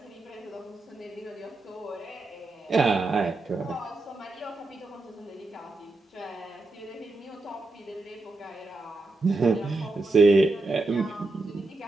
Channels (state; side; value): quieter; left; 3.1 dB